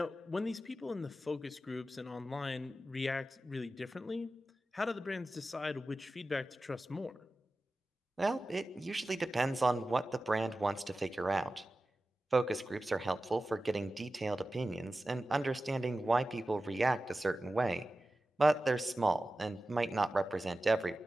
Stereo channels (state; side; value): normal; both; correlation 0.94